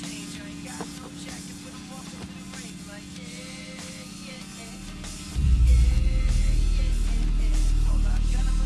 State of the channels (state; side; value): identical; both; correlation 1.00